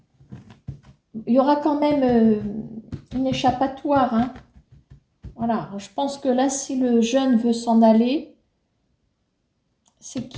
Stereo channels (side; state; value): both; identical; correlation 1.00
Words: Il y aura quand même une échappatoire. Hein. Voilà, je pense que là, si le jeune veut s'en aller, c'est